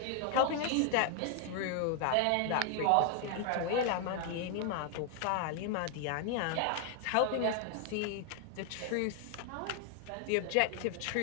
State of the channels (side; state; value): both; different; correlation 0.00